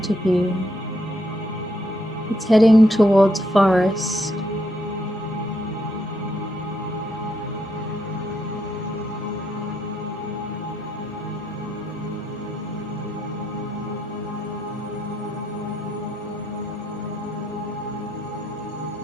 of you, it's heading towards a forest.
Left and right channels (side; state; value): both; normal; correlation 0.76